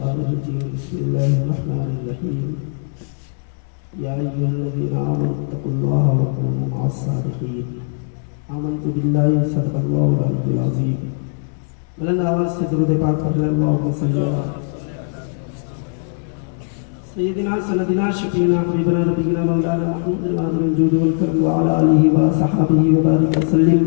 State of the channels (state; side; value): silent; right; 66 dB below the other